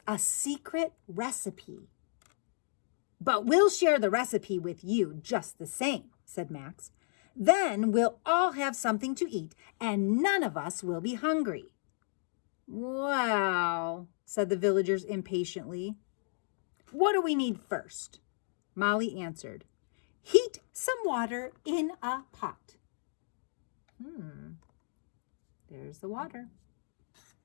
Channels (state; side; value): silent; right; digital silence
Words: a secret recipe." "But we'll share the recipe with you just the same," said Max. "Then we'll all have something to eat, and none of us will be hungry." "Well," said the villagers impatiently. "What do we need first?" Molly answered. "Heat some water in a pot." There's the water.